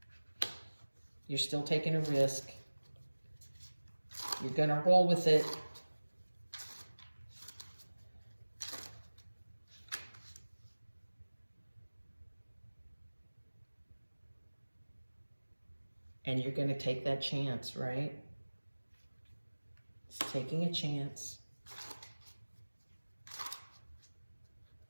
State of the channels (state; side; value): inverted; both; correlation -1.00